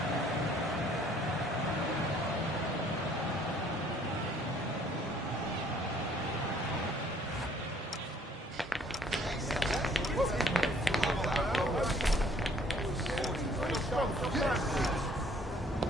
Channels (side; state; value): both; normal; correlation 0.59